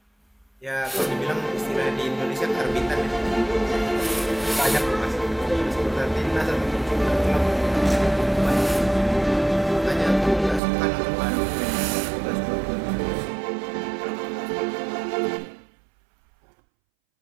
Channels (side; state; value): left; drops out; at 10.6 s